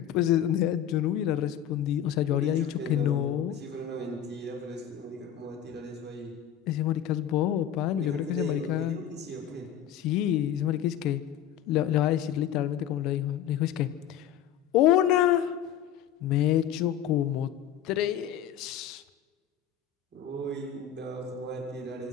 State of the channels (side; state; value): right; quieter; 10.1 dB